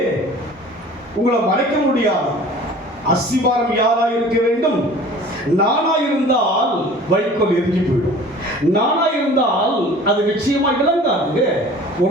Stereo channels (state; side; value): normal; both; correlation 0.45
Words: உங்களை மறைக்க முடியாது. அஸ்திவாரம் யாரா இருக்க வேண்டும்? நானா இருந்தால் வைக்கோல் எரிஞ்சு போயிடும். நானா இருந்தால் அது நிச்சயமா விளங்காதுங்க.